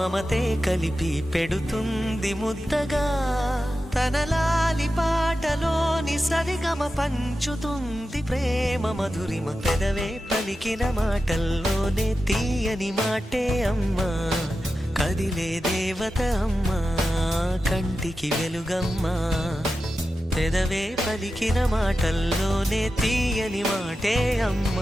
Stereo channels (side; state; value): both; normal; correlation 0.92